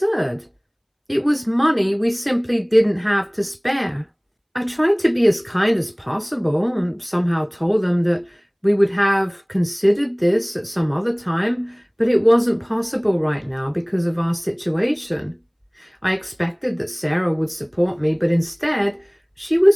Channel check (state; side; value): identical; both; correlation 1.00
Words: It was money we simply didn't have to spare. I tried to be as kind as possible and somehow told them that we would have considered this at some other time, but it wasn't possible right now because of our situation. I expected that Sarah would support me, but instead, she